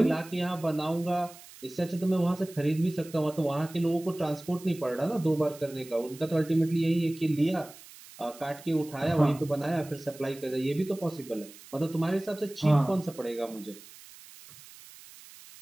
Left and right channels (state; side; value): noise; right; hiss, 19 dB below the sound